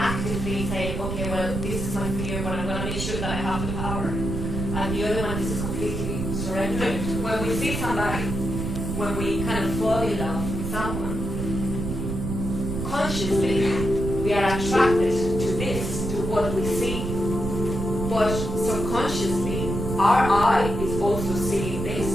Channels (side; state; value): right; noise; rumble, 4 dB below the sound